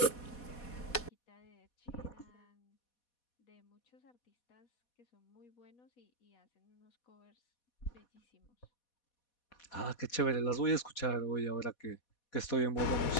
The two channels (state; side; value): late; right; 4.2 ms